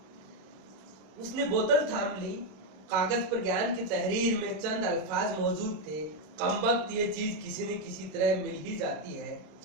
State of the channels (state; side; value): late; left; 26 ms